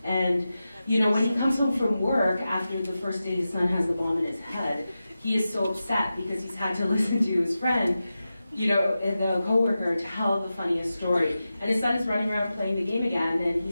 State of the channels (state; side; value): inverted; both; correlation -0.93